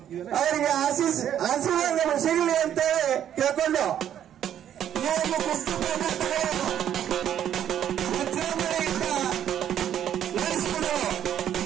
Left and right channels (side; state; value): left; quieter; 10.2 dB